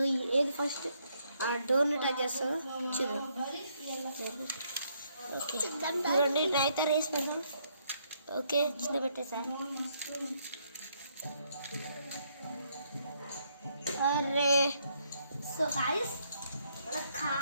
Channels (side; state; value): both; inverted; correlation -0.72